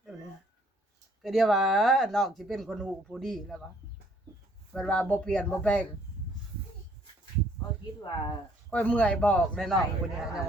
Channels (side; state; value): both; normal; correlation 0.63